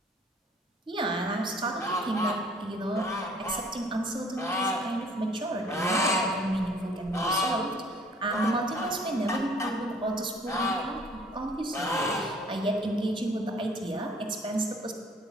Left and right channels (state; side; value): normal; both; correlation 0.55